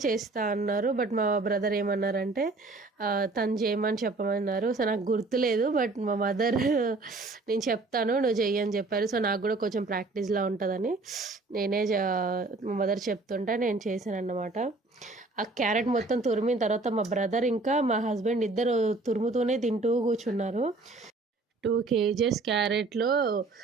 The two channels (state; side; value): quieter; left; 3.4 dB